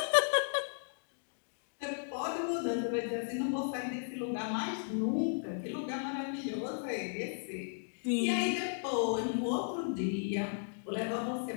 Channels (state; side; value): silent; right; digital silence